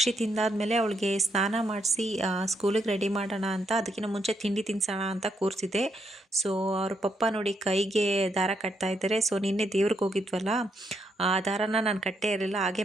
ತಿಂದಾದ್ಮೇಲೆ ಅವಳಿಗೆ ಸ್ನಾನ ಮಾಡಿಸಿ ಸ್ಕೂಲಿಗೆ ರೆಡಿ ಮಾಡೋಣ ಅಂತ, ಅದಕ್ಕಿಂತ ಮುಂಚೆ ತಿಂಡಿ ತಿನ್ಸೋಣ ಅಂತ ಕೂರಿಸಿದೆ. ಸೊ ಅವ್ರ ಪಪ್ಪ ನೋಡಿ ಕೈಗೆ ದಾರ ಕಟ್ತಾ ಇದ್ದಾರೆ. ಸೊ ನಿನ್ನೆ ದೇವ್ರಿಗೆ ಹೋಗಿದ್ವಲ್ಲ, ಆ ದಾರನ ನಾನು ಕಟ್ಟೇ ಇರಲಿಲ್ಲ, ಹಾಗೆ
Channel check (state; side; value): normal; both; correlation 0.77